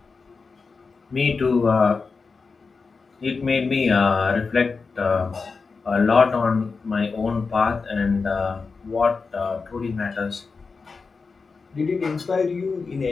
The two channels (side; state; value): right; quieter; 4.6 dB